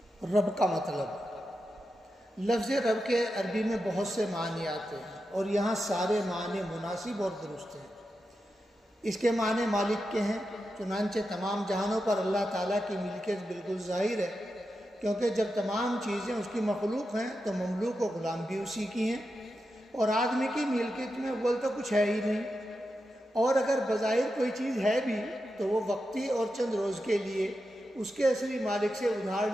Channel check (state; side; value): normal; both; correlation 0.89